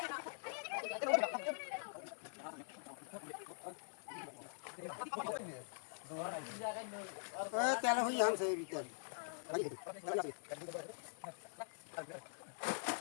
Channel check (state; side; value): silent; right; digital silence